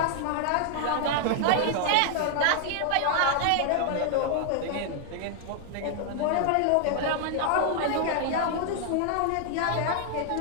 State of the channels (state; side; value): different; both; correlation 0.00